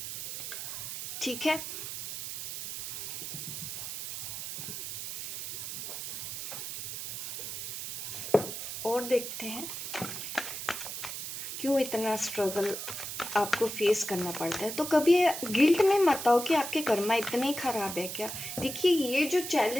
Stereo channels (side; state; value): right; noise; hiss, 6 dB below the sound